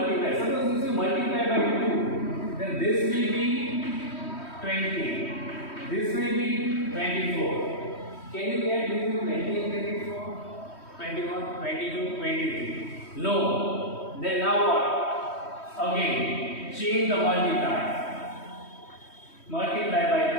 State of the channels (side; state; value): right; late; 3.1 ms